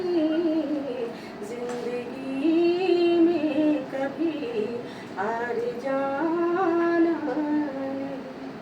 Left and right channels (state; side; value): identical; both; correlation 1.00